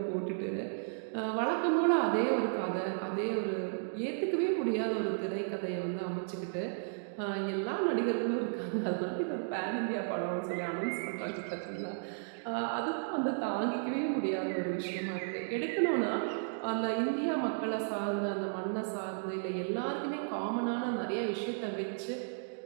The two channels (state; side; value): silent; left; digital silence